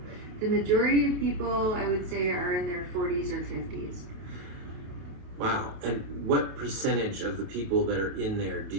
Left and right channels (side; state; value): left; late; 28 ms